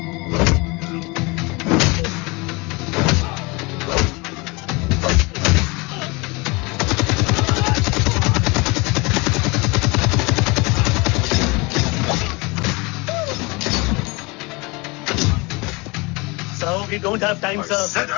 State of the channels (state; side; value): quieter; right; 26.4 dB